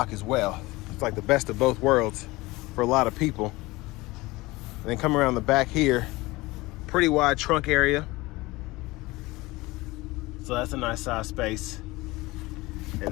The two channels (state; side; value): quieter; right; 21.1 dB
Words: as well. It's like the best of both worlds for a lot of people. And then come around the back here, pretty wide trunk area. So that's a nice size space.